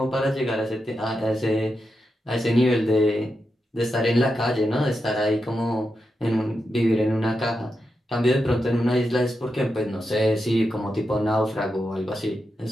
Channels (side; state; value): both; normal; correlation 0.87